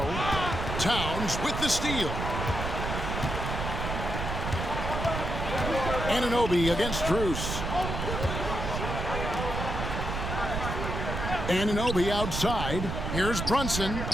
Towns with the steal. Anunoby against Strus. Anunoby outside. Here's Brunson.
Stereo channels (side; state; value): right; noise; rumble, 3 dB below the sound